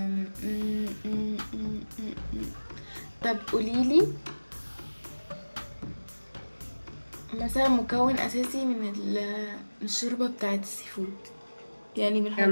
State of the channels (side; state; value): both; inverted; correlation -1.00